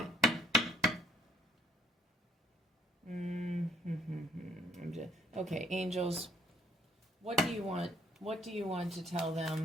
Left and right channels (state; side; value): normal; both; correlation 0.65